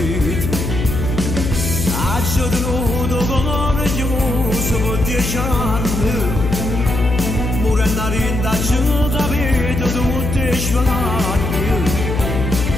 Ho tenuto coraggioso per 10 anni, morendo a rinda ci capito tutti i sfigati.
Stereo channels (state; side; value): noise; left; hum, 3 dB below the sound